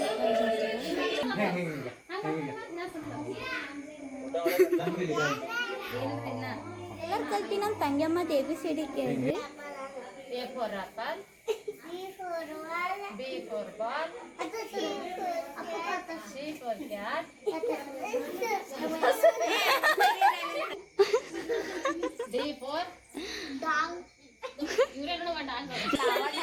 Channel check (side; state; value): both; identical; correlation 1.00